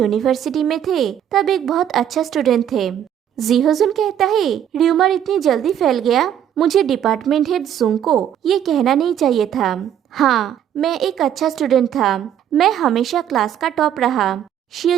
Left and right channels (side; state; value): left; quieter; 9.9 dB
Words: में थे तब एक बहुत अच्छा स्टूडेंट थे। जी होजुन कहता है, र्यूमर इतनी जल्दी फैल गया, मुझे डिपार्टमेंट हेड जुंग को ये कहना नहीं चाहिए था। हाँ, मैं एक अच्छा स्टूडेंट था, मैं हमेशा क्लास का टॉप रहा।